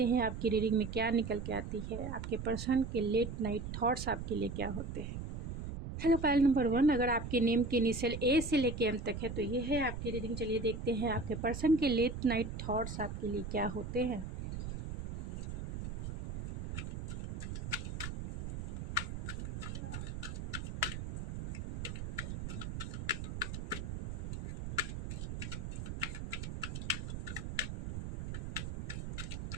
हैं आपकी रीडिंग में क्या निकल के आती है। आपके पर्सन के लेट नाइट थॉट्स आपके लिए क्या होते हैं। हेलो पाइल नंबर 1, अगर आपके नेम के इनिशियल ए से लेके एम तक है तो ये है आपकी रीडिंग। चलिए देखते हैं आपके पर्सन के लेट नाइट थॉट्स आपके लिए क्या होते हैं।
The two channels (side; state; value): right; noise; rumble, 5 dB below the sound